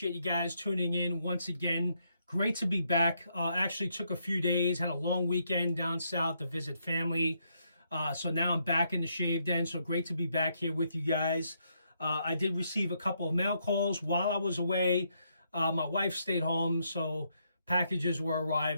you guys tuning in once again. Great to be back. Actually took a few days, had a long weekend down south to visit family. So now I'm back in the Shave Den. So great to be back here with you guys. I did receive a couple of mail calls while I was away. My wife stayed home, so packages were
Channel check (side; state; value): both; inverted; correlation -0.76